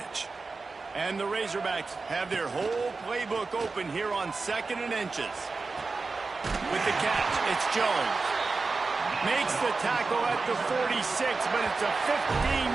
And the Razorbacks have their whole playbook open here on 2nd and inches. With the catch, it's Jones. Makes the tackle at the 46, but it's a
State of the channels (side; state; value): left; quieter; 4.0 dB